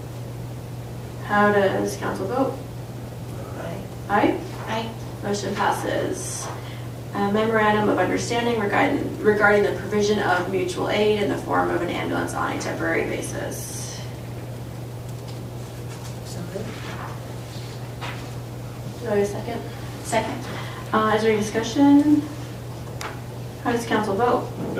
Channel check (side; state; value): both; identical; correlation 1.00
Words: How does council vote? Aye. Aye. Motion passes. A memorandum of understanding regarding the provision of mutual aid in the form of an ambulance on a temporary basis. So moved. Do I have a second? Second. Is there any discussion? How does council vote?